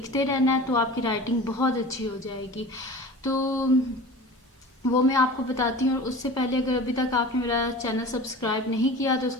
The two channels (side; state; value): both; normal; correlation 0.37